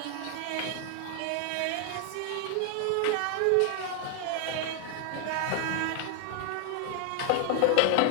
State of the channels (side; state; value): both; different; correlation 0.00